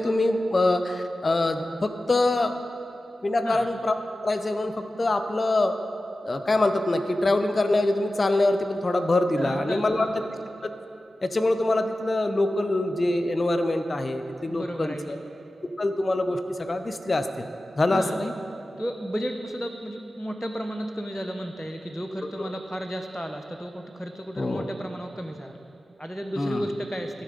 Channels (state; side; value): normal; both; correlation 0.95